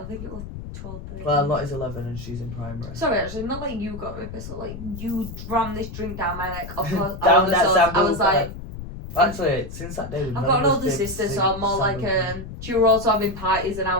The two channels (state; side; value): noise; left; rumble, 10 dB below the sound